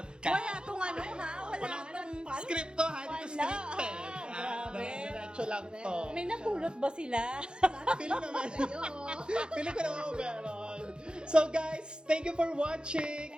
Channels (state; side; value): late; left; 0.050 ms